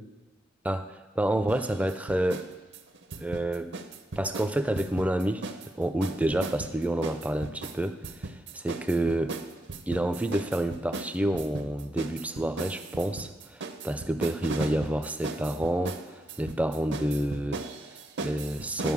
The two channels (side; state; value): both; normal; correlation 0.84